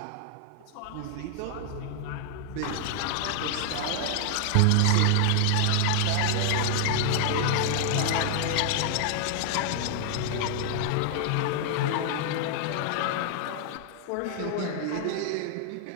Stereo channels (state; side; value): different; both; correlation 0.00